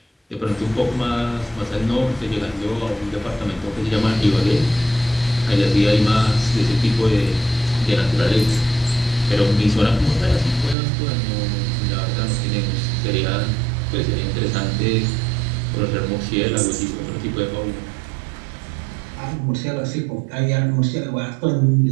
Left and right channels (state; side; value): drops out; left; at 10.8 s